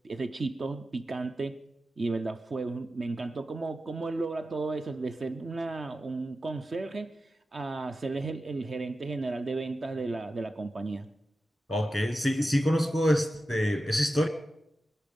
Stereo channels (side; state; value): both; normal; correlation 0.92